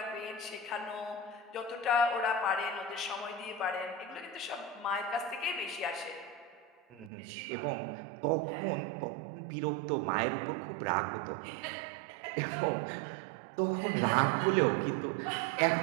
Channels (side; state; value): left; drops out; at 7.1 s